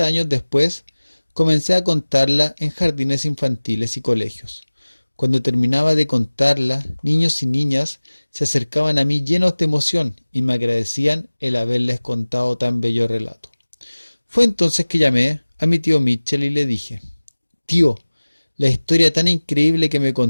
años después, comencé a contarla en jardines infantiles y colegios. Cuando terminaba de contarla, niños y niñas se acercaban a mí llenos de emoción y me agradecían el haberles contado tan bello relato. Fue entonces que llamé a mi tío Mitchell y le dije: Tío, la historia tan increíble que me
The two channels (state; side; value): inverted; both; correlation -1.00